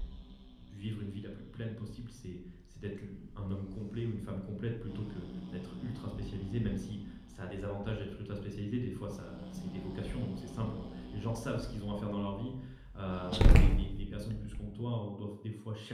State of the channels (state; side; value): identical; both; correlation 1.00